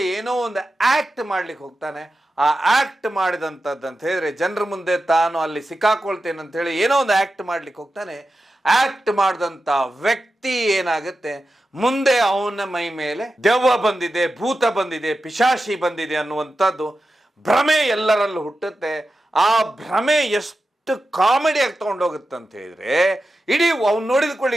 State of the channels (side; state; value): both; normal; correlation 0.92